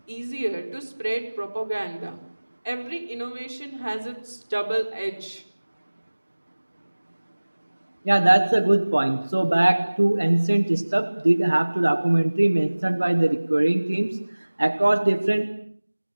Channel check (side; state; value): both; inverted; correlation -1.00